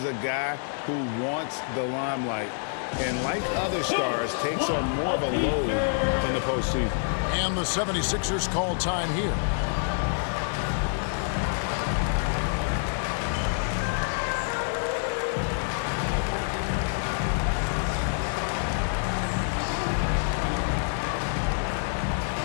a guy who wants the limelight. And like other stars, takes on more of a load in the postseason. And the 76ers call time here.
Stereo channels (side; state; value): right; silent; 60 dB below the other